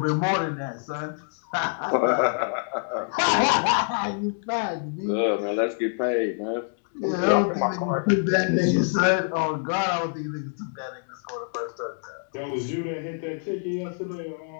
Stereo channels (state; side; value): silent; right; digital silence